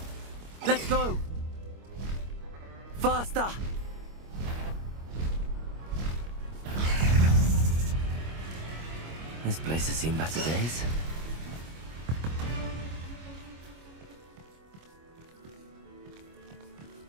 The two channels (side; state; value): left; late; 25 ms